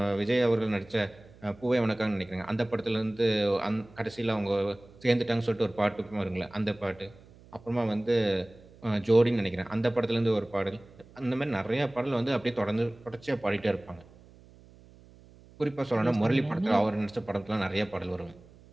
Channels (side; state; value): right; noise; hum, 24 dB below the sound